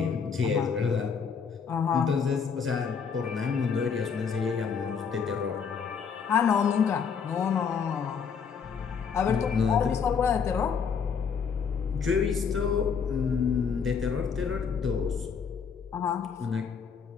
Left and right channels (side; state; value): right; quieter; 6.3 dB